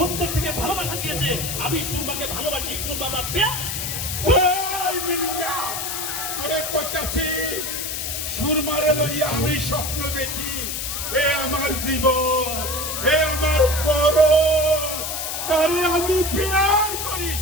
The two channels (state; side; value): noise; left; hiss, 3 dB below the sound